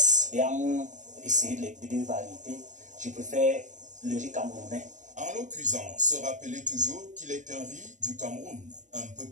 Et en essayer les deux variétés, je préfère le riz camerounais. En le cuisant, se rappeler toujours qu'il est un riz du Cameroun, un peu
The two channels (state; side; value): late; left; 0.36 ms